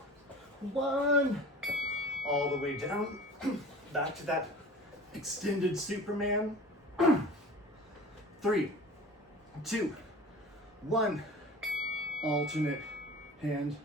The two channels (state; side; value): normal; both; correlation 0.40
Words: 1. All the way down. Back to that extended Superman. 3, 2, 1. Alternate hand